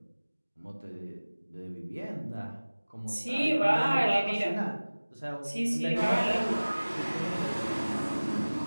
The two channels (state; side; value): inverted; both; correlation -1.00